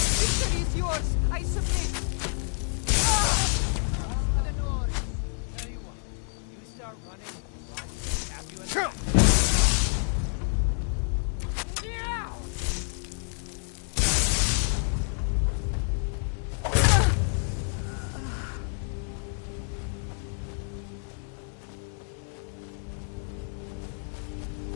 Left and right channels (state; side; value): silent; right; 55 dB below the other